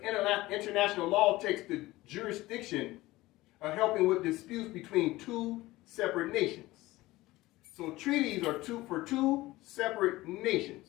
international law takes the jurisdiction of helping with disputes between two separate nations. So treaties are for two separate nations,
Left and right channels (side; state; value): right; quieter; 18.5 dB